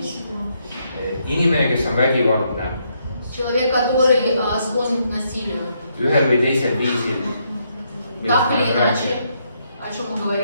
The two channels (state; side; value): inverted; both; correlation -0.76